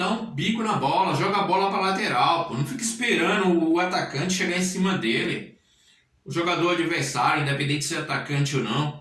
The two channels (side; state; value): both; identical; correlation 1.00